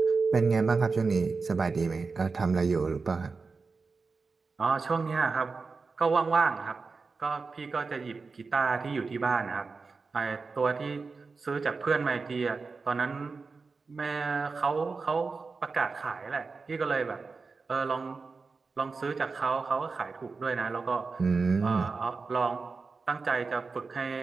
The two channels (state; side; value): quieter; left; 4.4 dB